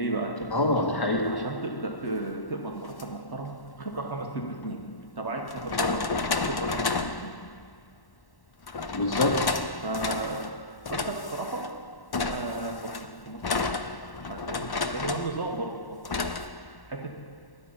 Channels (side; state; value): right; late; 1.1 ms